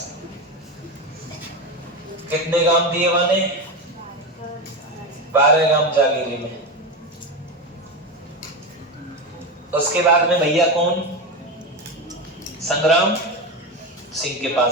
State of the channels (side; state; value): both; normal; correlation 0.18